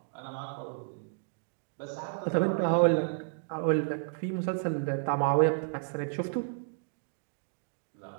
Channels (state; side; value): silent; left; digital silence